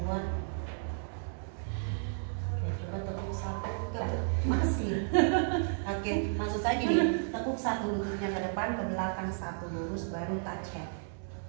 Oke, maksud saya gini, tekuk satu lututnya ke depan, ke belakang satu lurus, baru touch head.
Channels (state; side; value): silent; left; 56 dB below the other